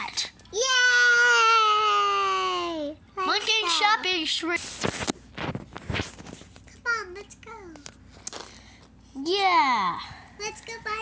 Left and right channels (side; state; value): both; identical; correlation 1.00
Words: Yay! Monkey Let's go. shopping shrimp. Come on, let's go. Yeah. Let's go